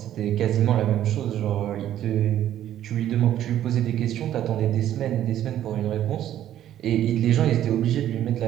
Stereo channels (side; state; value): left; quieter; 11.7 dB